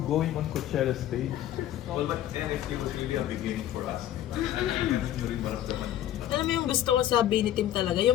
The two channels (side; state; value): right; quieter; 12.2 dB